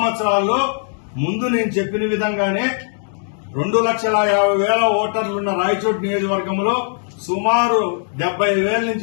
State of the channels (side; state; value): right; silent; digital silence